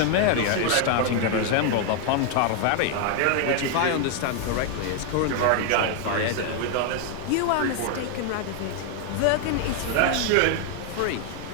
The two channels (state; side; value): different; both; correlation 0.00